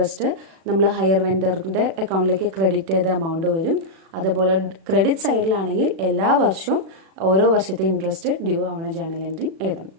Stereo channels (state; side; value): late; left; 36 ms